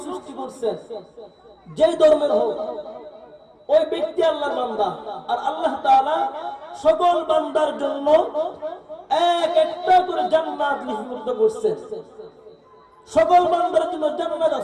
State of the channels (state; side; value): identical; both; correlation 1.00